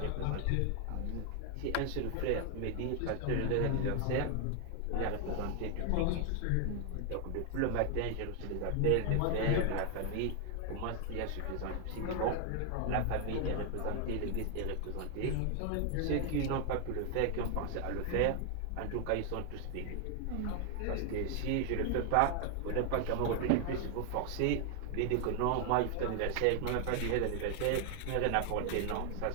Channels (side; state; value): both; different; correlation 0.00